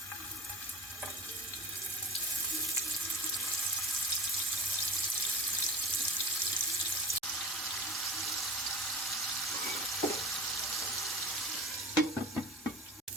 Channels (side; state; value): both; normal; correlation 0.35